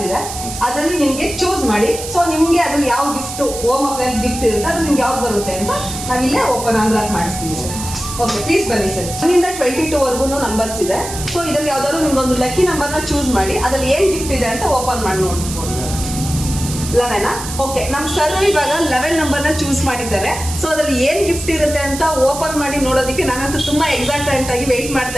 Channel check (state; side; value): noise; right; hiss, 9 dB below the sound